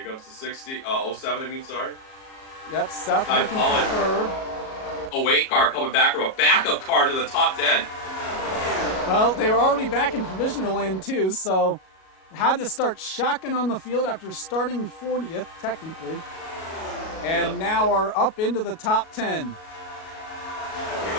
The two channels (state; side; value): late; right; 37 ms